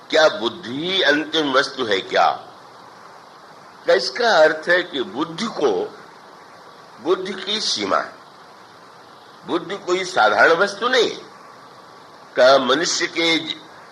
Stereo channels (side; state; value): both; identical; correlation 1.00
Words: क्या बुद्धि ही अंतिम वस्तु है क्या? इसका अर्थ है कि बुद्धि की सीमा है। बुद्धि कोई साधारण वस्तु नहीं है। का मनुष्य के